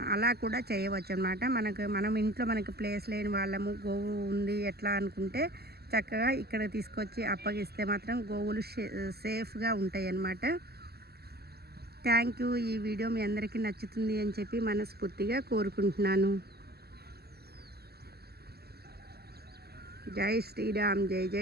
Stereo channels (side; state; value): left; late; 0.46 ms